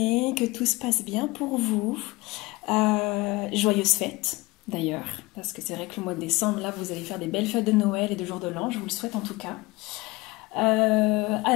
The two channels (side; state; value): right; quieter; 22.3 dB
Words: que tout se passe bien pour vous. Joyeuses fêtes d'ailleurs, parce que c'est vrai que le mois de décembre, là, vous allez faire des belles fêtes de Noël et de jour de l'an, je vous le souhaite en tout cas.